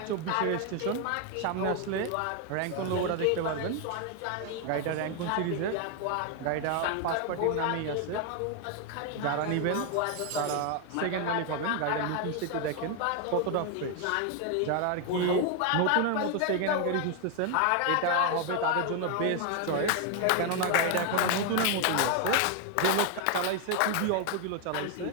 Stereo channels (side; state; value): both; different; correlation 0.01